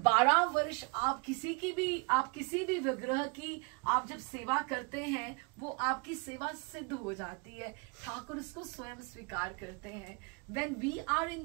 वर्ष आप किसी भी विग्रह की आप जब सेवा करते हैं वो आपकी सेवा सिद्ध हो जाती है, ठाकुर इसको स्वयं स्वीकार करते हैं। When we are in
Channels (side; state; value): left; quieter; 29.9 dB